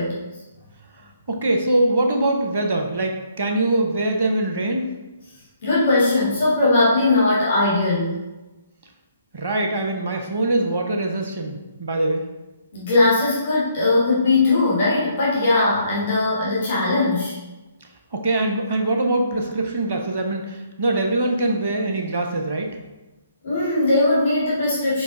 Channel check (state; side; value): inverted; both; correlation -0.69